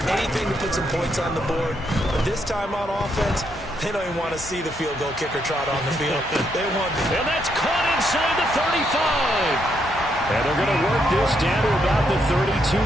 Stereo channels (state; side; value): normal; both; correlation 0.77